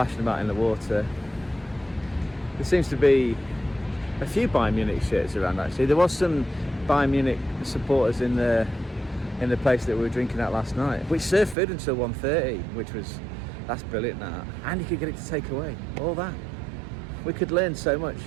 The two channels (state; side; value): drops out; left; at 11.6 s